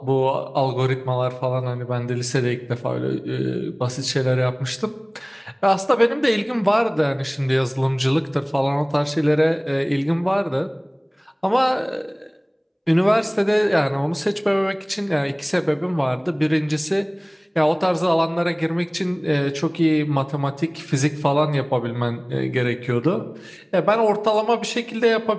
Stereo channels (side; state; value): both; identical; correlation 1.00